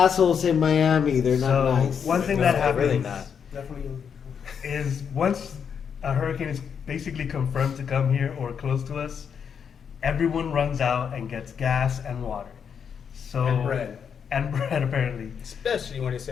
in Miami. They're not So nice. one thing that happens really not. Definitely. is once a hurricane is basically confirmed to come here or close to us, everyone runs out and gets gas and water. So And bread. And bread, apparently. Especially when it's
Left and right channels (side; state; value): right; quieter; 7.2 dB